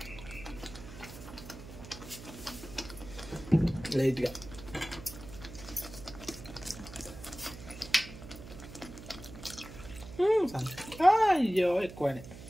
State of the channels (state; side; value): noise; right; hum, 14 dB below the sound